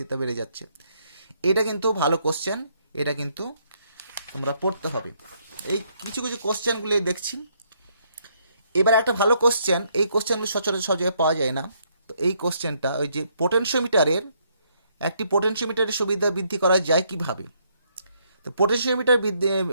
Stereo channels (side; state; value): both; inverted; correlation -0.72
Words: বেড়ে যাচ্ছে। এটা কিন্তু ভালো কোশ্চেন, এটা কিন্তু তোমরা পড়তে হবে। এই কিছু কোশ্চেনগুলি দেখছি। এবার একটা ভালো কোশ্চেন, এই কোশ্চেনগুলি সচরাচর সব জায়গায় পাওয়া যায় না। তো এই কোশ্চেনটা ওই যে পোটেনশিওমিটারের সুবিধা বৃদ্ধি করা যায় কিভাবে? তো পোটেনশিওমিটার